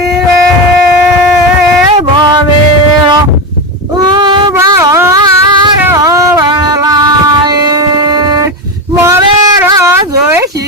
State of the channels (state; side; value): normal; both; correlation 0.14